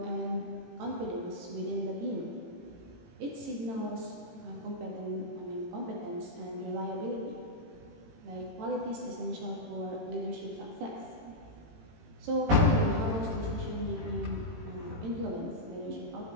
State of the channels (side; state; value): left; late; 18 ms